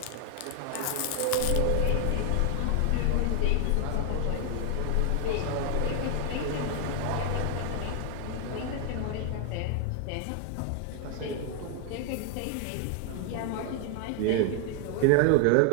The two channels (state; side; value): different; both; correlation 0.00